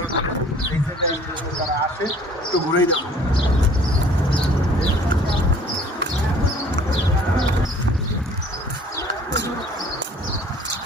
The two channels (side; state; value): both; normal; correlation 0.53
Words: করে, এই জায়গায় তারা আসে। একটু ঘুরেই দেখো।